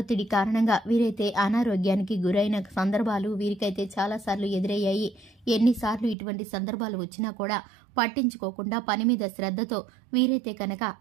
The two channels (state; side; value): drops out; left; at 6.2 s